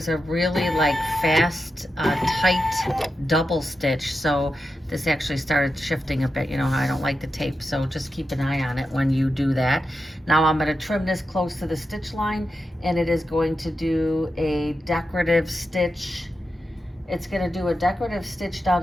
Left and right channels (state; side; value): normal; both; correlation 0.89